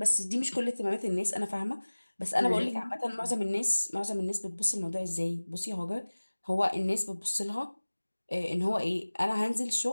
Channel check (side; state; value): both; inverted; correlation -1.00